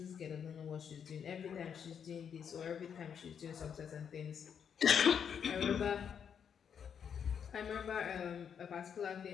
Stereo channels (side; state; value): right; quieter; 7.6 dB